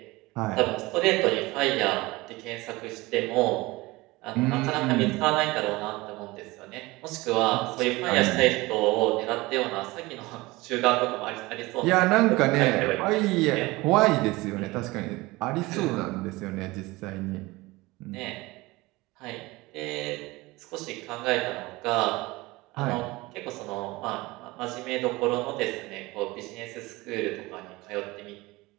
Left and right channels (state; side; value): quieter; left; 21.3 dB